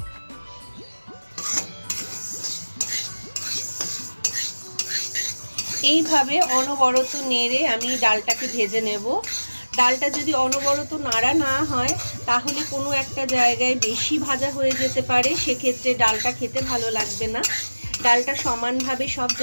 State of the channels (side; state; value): both; inverted; correlation -1.00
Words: এইভাবে অনবরত নেড়ে আমি ডালটাকে ভেজে নেব। ডালটা যদি অনবরত নাড়া না হয় তাহলে কোনো একটা জায়গায় বেশি ভাজা হয়ে যেতে পারে, সেক্ষেত্রে ডালটা খেতে ভালো লাগবে না। ডালটা সমানভাবে সব